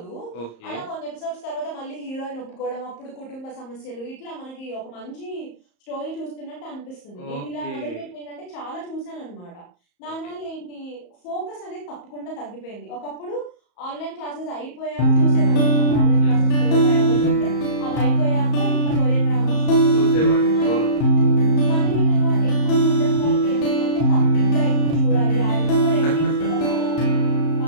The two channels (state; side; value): late; right; 34 ms